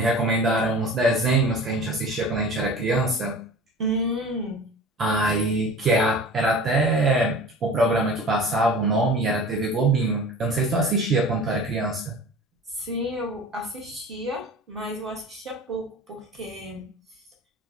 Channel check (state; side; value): normal; both; correlation 0.39